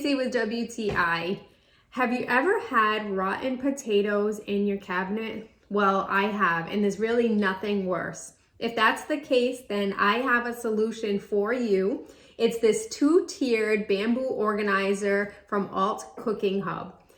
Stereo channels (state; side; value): identical; both; correlation 1.00